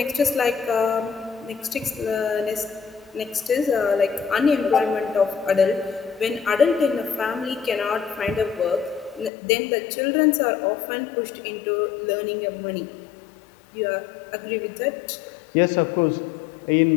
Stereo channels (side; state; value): right; drops out; at 9.3 s